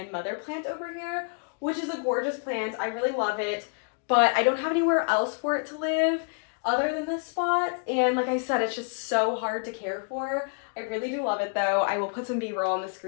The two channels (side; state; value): right; quieter; 38.7 dB